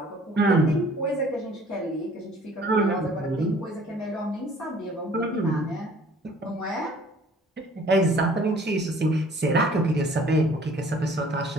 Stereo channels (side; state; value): both; normal; correlation 0.54